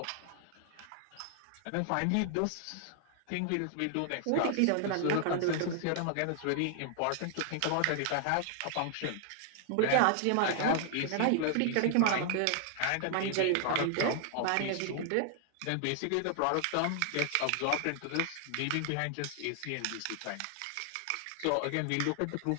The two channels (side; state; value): both; different; correlation -0.01